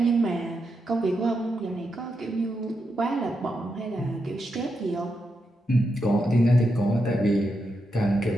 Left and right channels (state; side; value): normal; both; correlation 0.85